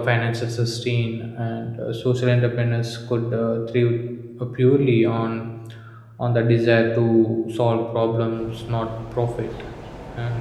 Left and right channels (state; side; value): identical; both; correlation 1.00